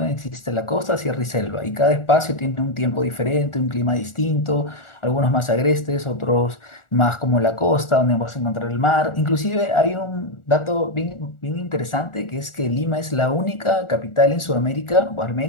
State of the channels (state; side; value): late; right; 1.4 ms